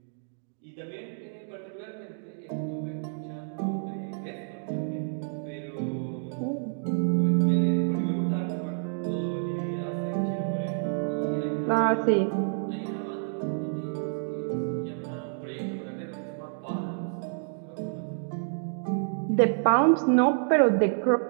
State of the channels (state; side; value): silent; left; digital silence